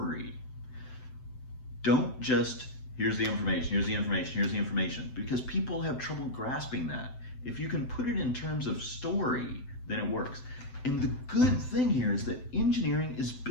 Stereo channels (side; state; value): right; late; 7.9 ms